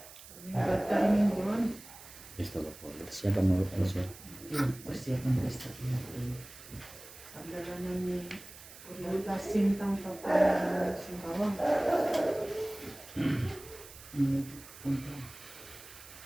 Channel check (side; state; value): right; noise; hiss, 17 dB below the sound